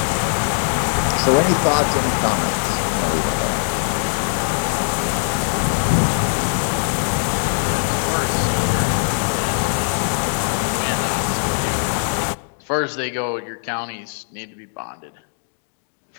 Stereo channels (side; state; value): right; silent; digital silence